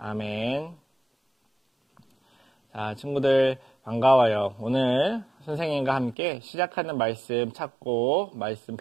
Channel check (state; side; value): drops out; left; at 6.2 s